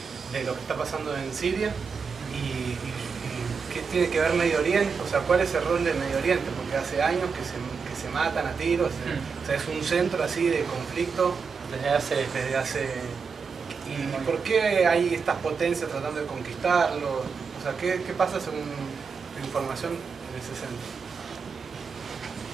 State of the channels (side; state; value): left; quieter; 5.5 dB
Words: lo que está pasando en Siria y qué tiene que ver Medio Oriente, o sea, cuál es el rol del Medio Oriente, porque hace años que se matan a tiros, o sea, es un centro así de conflicto desde hace ¿y por qué hay estas potencias tratando de conquistarlo? O sea, ¿qué pasa según tu información en ese centro?